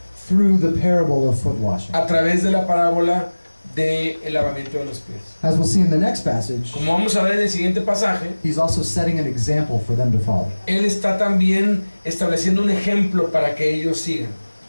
through the parable of foot washing. a través de la parábola del lavamiento de los pies. As we'll see in the next passage, Como vamos a ver en el siguiente pasaje, he's also setting an example for them to follow. Él está también estableciendo un ejemplo para que ellos sigan.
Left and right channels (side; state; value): both; inverted; correlation -1.00